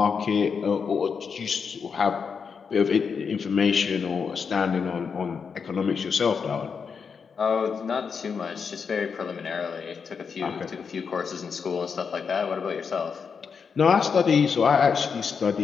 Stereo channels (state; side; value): quieter; right; 6.0 dB